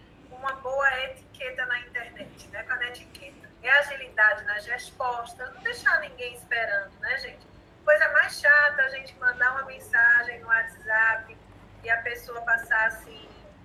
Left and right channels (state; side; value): identical; both; correlation 1.00